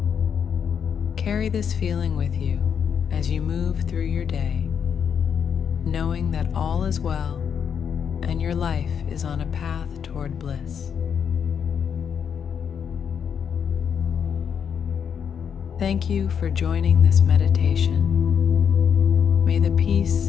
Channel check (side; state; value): right; quieter; 7.5 dB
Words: Carry this feeling with you as you move through your day, knowing that all is well and your life is on a path toward bliss. Thank you for joining this meditation. May the peace